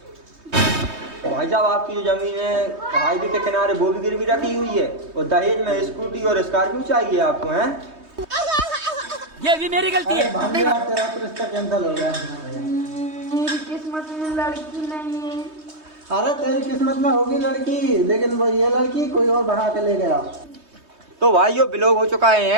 भाई साहब आपकी जो जमीन है हाईवे के किनारे वो भी गिरवी रखी हुई है और दहेज में स्कूटी और स्कॉर्पियो चाहिए आपको हैं? ये भी मेरी गलती है। भाभी यार तेरा तो रिश्ता कैंसिल हो गया। मेरी किस्मत में लड़की नहीं है। अरे तेरी किस्मत में होगी लड़की, लेकिन वो ये लड़की कोई और बढ़ा के ले गया। तो भाइयों ब्लॉग हो चुका है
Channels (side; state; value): left; late; 3.2 ms